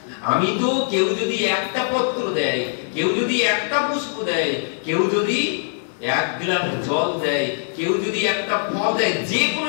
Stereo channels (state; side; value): silent; right; 64 dB below the other